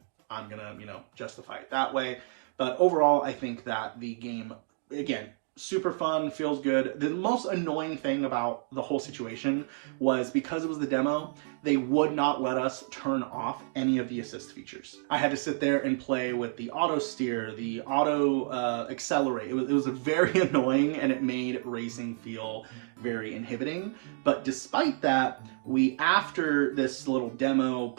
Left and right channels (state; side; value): silent; left; digital silence